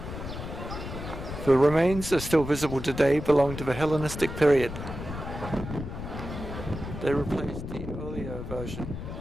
The remains are still visible today, belong to the Hellenistic period. They replaced the earlier version.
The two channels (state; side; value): noise; left; rumble, 8 dB below the sound